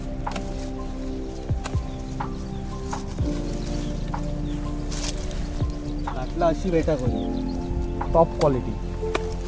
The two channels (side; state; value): both; identical; correlation 1.00